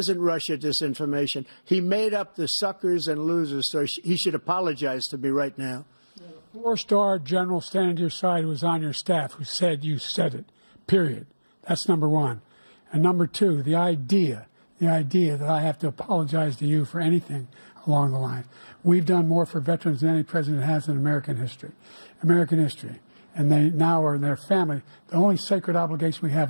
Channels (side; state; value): both; inverted; correlation -1.00